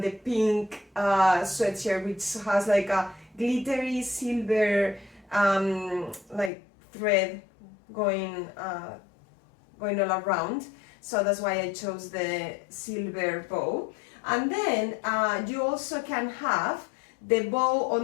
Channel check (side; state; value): right; drops out; at 6.5 s